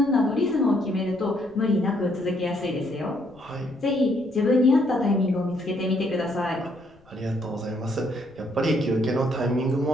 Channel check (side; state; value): left; noise; rumble, 29 dB below the sound